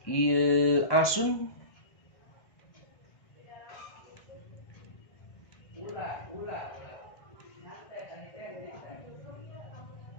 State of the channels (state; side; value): late; right; 1.2 ms